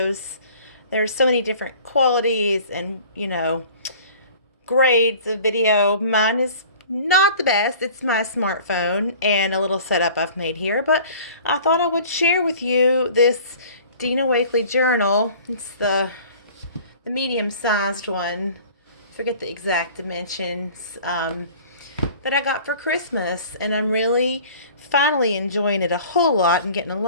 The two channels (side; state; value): both; inverted; correlation -0.47